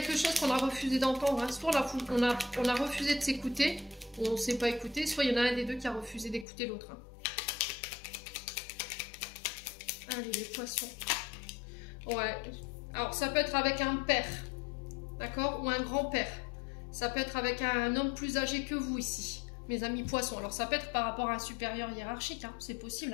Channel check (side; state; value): right; drops out; at 6.5 s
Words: chose qu'on a refusé d'entendre. Hein. Soit on a refusé de s'écouter, on ne s'est pas écouté, soit il y en a un des deux qui a refusé d'écouter l'autre. Hein. Allez, les poissons. Ouais. Alors, ça peut être avec un père. D'accord? Ou un grand-père. Ça peut être avec un homme plus âgé que vous ici. Mes amis poissons. Alors, ça peut être par rapport à un supérieur hiérarchique. Hein. C'est